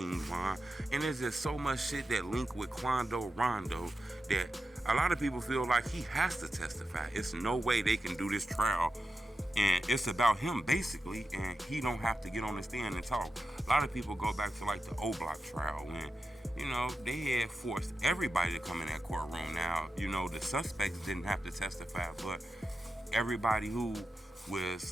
Von. And there's just so much shit that link with Quando Rondo that a lot of people feel like he has to testify. It's no way they can do this trial. And it's about him basically, and he don't have to get on the stand and talk. A lot of people go back to like the O Block trial when, you know, they had forced everybody to come in that courtroom. Now, you know, the suspects didn't have to testify, but everybody who was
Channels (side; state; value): both; normal; correlation 0.90